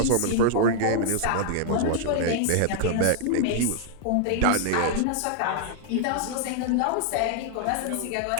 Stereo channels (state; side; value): different; both; correlation -0.01